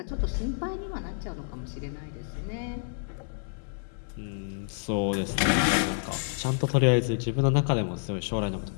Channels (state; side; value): silent; right; digital silence